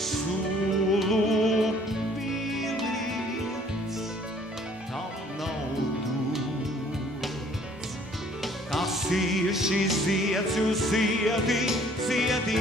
piliens tam nav dots. Kas ir šis zieds, jūs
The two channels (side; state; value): both; normal; correlation 0.57